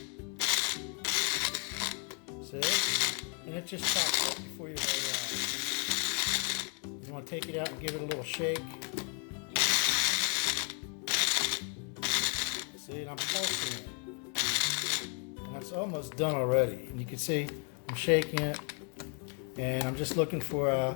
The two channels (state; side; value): quieter; right; 39.9 dB